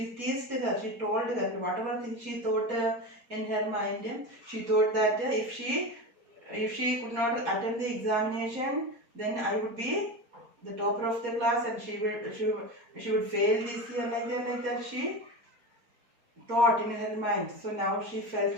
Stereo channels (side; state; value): left; late; 4.2 ms